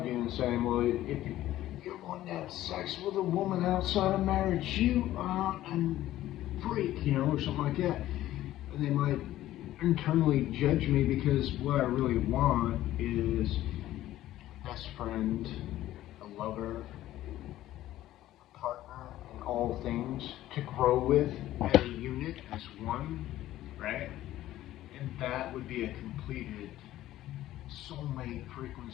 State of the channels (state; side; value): quieter; right; 14.2 dB